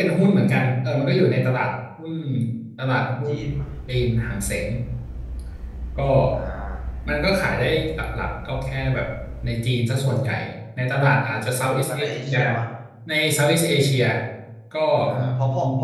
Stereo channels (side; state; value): both; identical; correlation 1.00